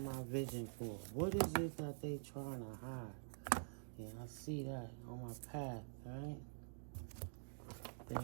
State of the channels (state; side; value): silent; left; digital silence